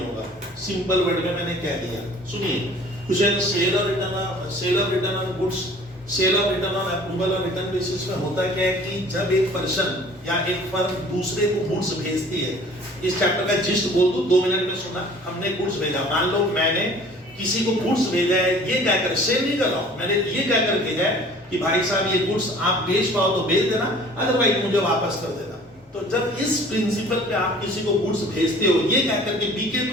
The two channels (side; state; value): both; normal; correlation 0.49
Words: होगा। सिंपल वर्ड में मैंने कह दिया, सुनिए। Question sale of return on goods, sale of return on approval और रिटर्न बेसिस में होता क्या है कि जब एक पर्सन या एक फर्म दूसरे को गुड्स भेजती है, इस चैप्टर का जिस्ट बोल दूं 2 मिनट में सुना। हमने गुड्स भेजा, मान लो मैंने किसी को गुड्स भेजा है, ये क्या कर, सेल नहीं कर रहा हूं, मैंने ये क्या कर भेजा है कि भाई साहब ये गुड्स आप बेच पाओ तो बेच देना, अदरवाइज मुझे वापस कर देना। तो जब इस प्रिंसिपल पे आप किसी को गुड्स भेजते हो, ये क्या करके बिके